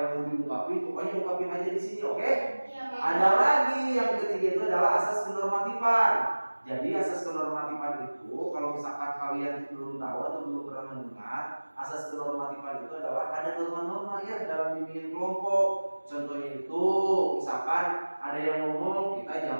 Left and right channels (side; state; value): both; inverted; correlation -1.00